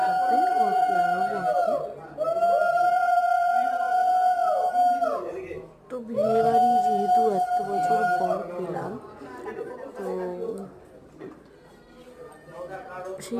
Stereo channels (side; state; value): both; identical; correlation 1.00